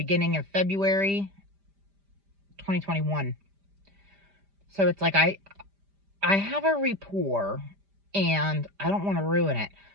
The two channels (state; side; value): late; left; 5.0 ms